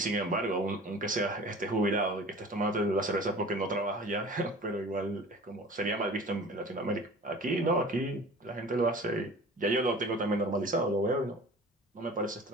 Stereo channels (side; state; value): both; normal; correlation 0.42